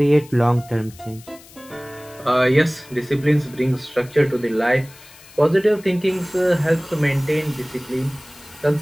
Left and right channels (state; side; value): noise; left; hiss, 22 dB below the sound